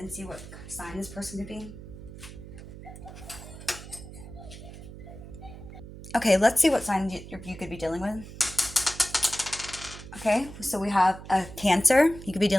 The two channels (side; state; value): right; noise; hum, 14 dB below the sound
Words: see what sign this person could be. Okay, let's see what sign you could be dealing with. Okay, so we have a Cancer. You could be